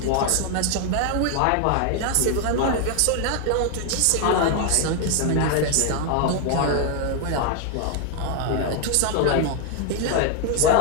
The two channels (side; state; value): both; different; correlation 0.00